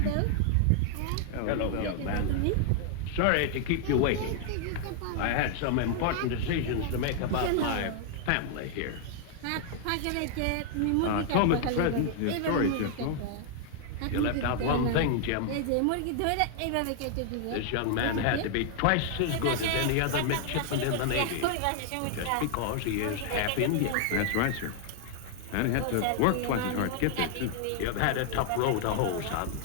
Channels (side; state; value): both; different; correlation 0.00